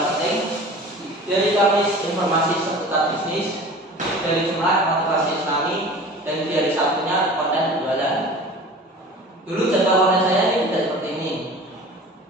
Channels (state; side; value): normal; both; correlation 0.40